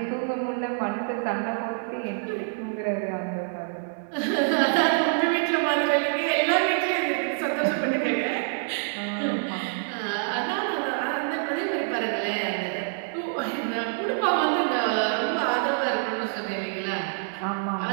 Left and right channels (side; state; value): left; silent; digital silence